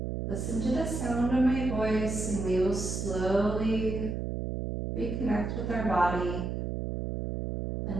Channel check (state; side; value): noise; right; hum, 3 dB below the sound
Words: listen to the sound of my voice and we will slowly reconnect with our body